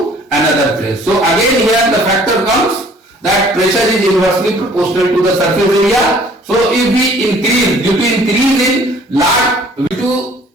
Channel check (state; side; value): normal; both; correlation 0.55